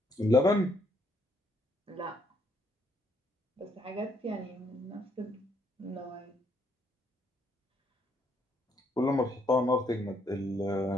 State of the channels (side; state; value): both; normal; correlation 0.71